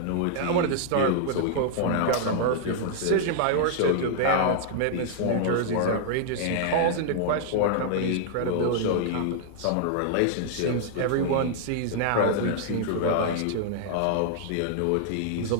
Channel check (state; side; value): different; both; correlation -0.01